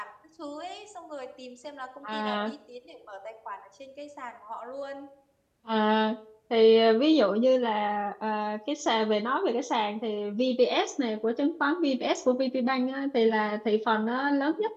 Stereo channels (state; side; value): identical; both; correlation 1.00